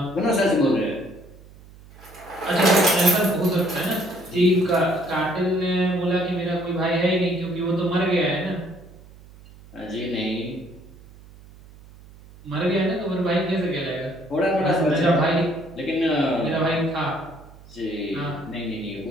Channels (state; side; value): noise; right; hum, 22 dB below the sound